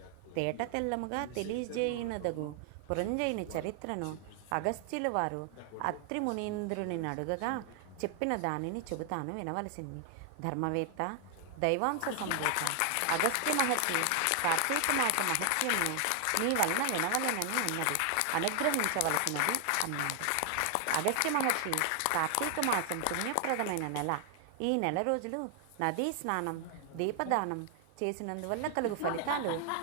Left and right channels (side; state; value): both; different; correlation 0.00